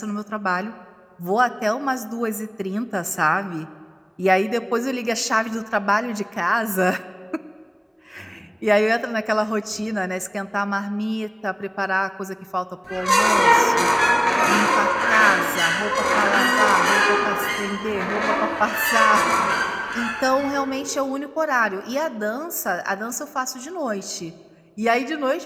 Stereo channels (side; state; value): both; identical; correlation 1.00